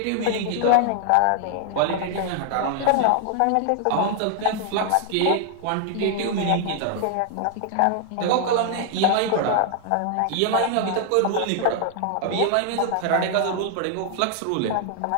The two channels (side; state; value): both; different; correlation 0.00